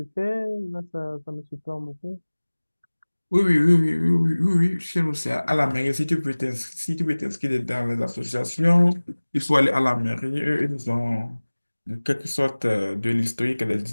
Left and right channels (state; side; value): inverted; both; correlation -1.00